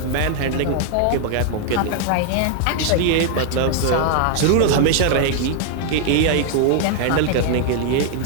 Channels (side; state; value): both; different; correlation 0.00